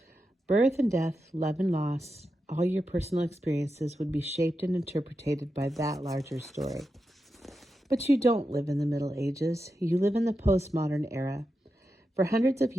Birth and death, love and loss, all your personal experiences would be shaped and interpreted by that larger story. But you don't live in the Middle Ages. You live in the postmodern era. For hundreds of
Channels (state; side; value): normal; both; correlation 0.89